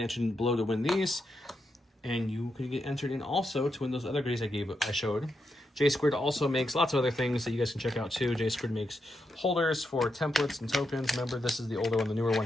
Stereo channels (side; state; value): both; normal; correlation 0.84